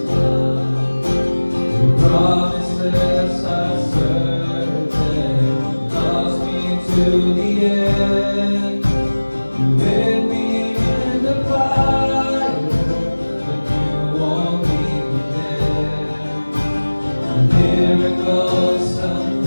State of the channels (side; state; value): both; inverted; correlation -1.00